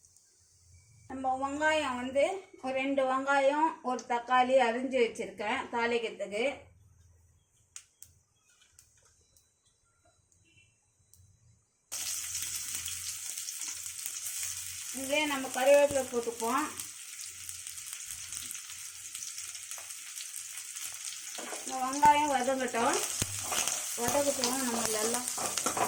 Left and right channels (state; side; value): identical; both; correlation 1.00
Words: நம்ம வெங்காயம் ஒரு 2 வெங்காயம் ஒரு தக்காளி அரிஞ்சு வச்சுருக்கேன் தாளிக்கிறதுக்கு. இதே நம்ம கறிவேப்பிலை போட்டுப்போம். இந்த வெங்காயம் வதங்கட்டும். நம்ம எல்லாம்